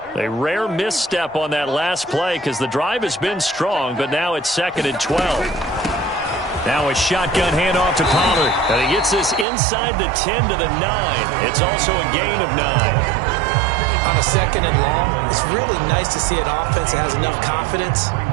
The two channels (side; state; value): left; drops out; at 9.5 s